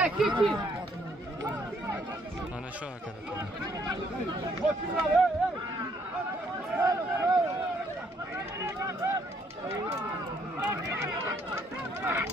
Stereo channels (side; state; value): both; normal; correlation 0.68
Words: ketdi? Mana shu aka.